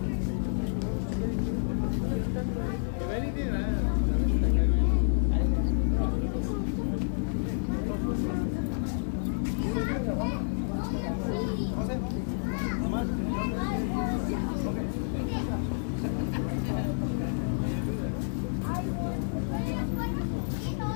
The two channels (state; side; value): silent; right; digital silence